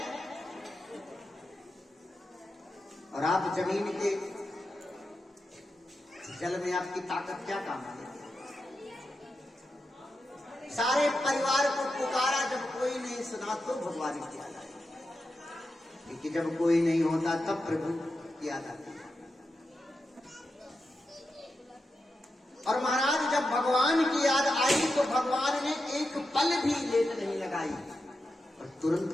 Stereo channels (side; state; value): both; normal; correlation 0.89